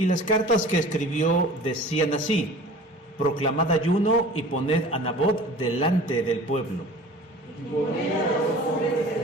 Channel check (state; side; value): normal; both; correlation 0.43